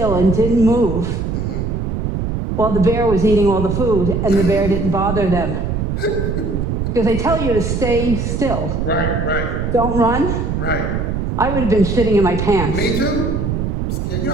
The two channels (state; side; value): noise; right; rumble, 1 dB below the sound